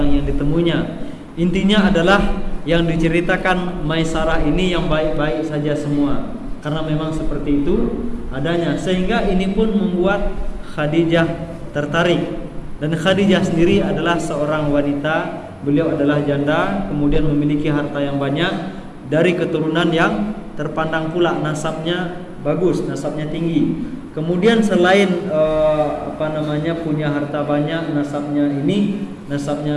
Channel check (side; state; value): both; identical; correlation 1.00